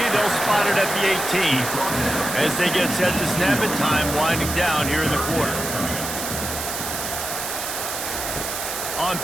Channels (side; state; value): right; noise; hiss, 5 dB below the sound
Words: They'll spot it at the 18. As they get set to snap it, time winding down here in the quarter. On